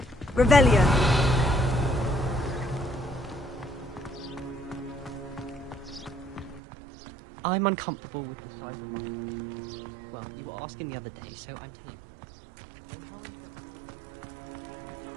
dormitory. Revelio. I'm uncomfortable with the size of my... Well, you were asking the other day, so I'm telling you. When Howin said draw a fence, how was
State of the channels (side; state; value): left; drops out; at 6.6 s